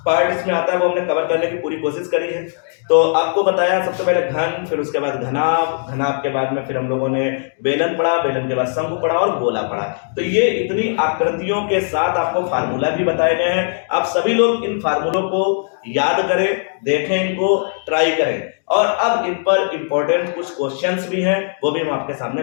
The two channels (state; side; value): silent; right; digital silence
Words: पार्ट इसमें आता है वो हमने कवर करने की पूरी कोशिश करी है। तो आपको बताया सबसे पहले घन, फिर उसके बाद घनाभ, घनाभ के बाद में फिर हम लोगों ने बेलन पढ़ा, बेलन के बाद शंकु पढ़ा और गोला पढ़ा। तो ये इतनी आकृतियों के साथ आपको फार्मूला भी बताए गए हैं। आप सभी लोग इन फार्मूलों को याद करें, देखें, इनको ट्राई करें, और अब इन पर इंपॉर्टेंट कुछ क्वेश्चंस भी हैं, वो भी हम आपके सामने